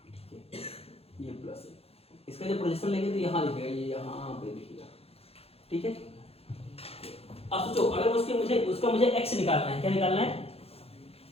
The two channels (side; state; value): right; late; 0.29 ms